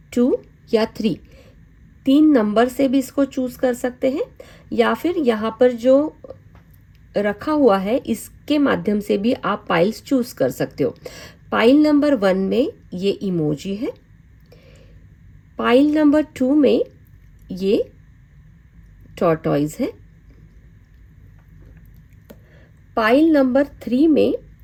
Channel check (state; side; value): identical; both; correlation 1.00